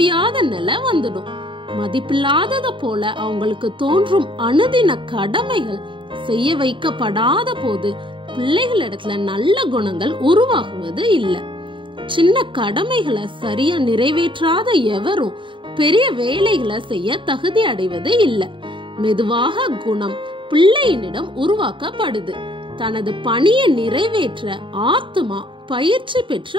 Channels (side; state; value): left; late; 0.24 ms